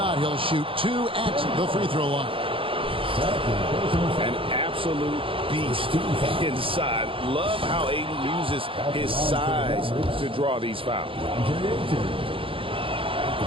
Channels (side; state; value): left; late; 0.26 ms